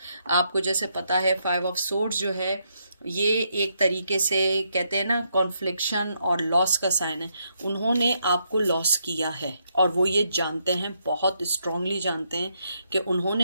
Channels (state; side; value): inverted; both; correlation -0.78